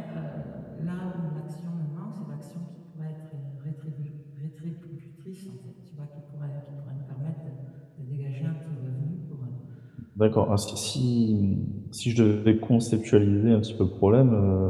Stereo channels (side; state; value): both; identical; correlation 1.00